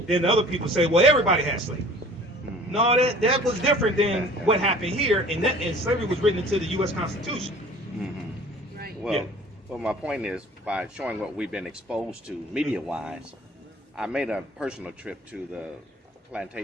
then other people say, well, everybody has slavery. No, that was different than what happened here, and slavery was written into the U.S. Constitution. Right. Well, my point is, by showing what we've been exposed to media-wise, I made a personal trip to the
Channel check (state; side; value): normal; both; correlation 0.48